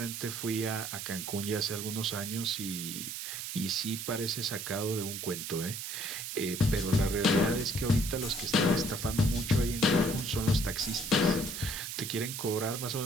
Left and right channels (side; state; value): right; noise; hiss, 6 dB below the sound